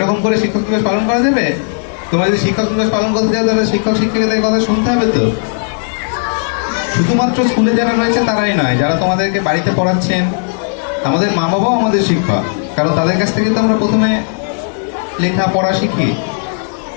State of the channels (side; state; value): right; silent; 70 dB below the other